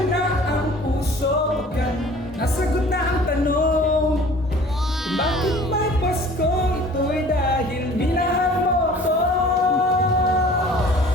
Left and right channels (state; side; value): normal; both; correlation 0.48